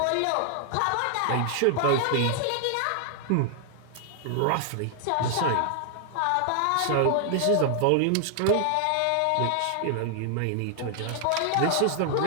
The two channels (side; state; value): both; different; correlation 0.00